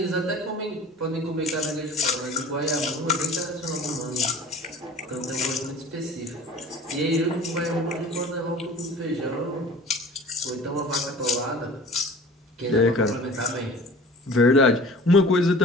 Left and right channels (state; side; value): normal; both; correlation 0.42